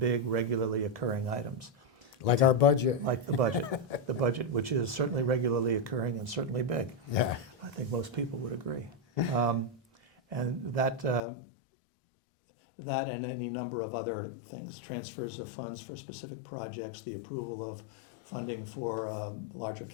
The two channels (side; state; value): right; drops out; at 11.2 s